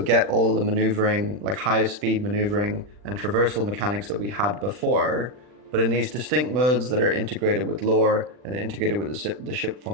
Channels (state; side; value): late; left; 40 ms